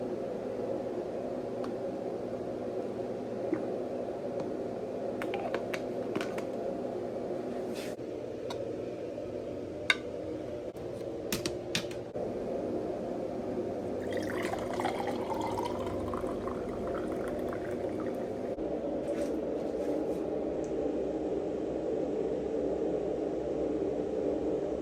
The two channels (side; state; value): both; identical; correlation 1.00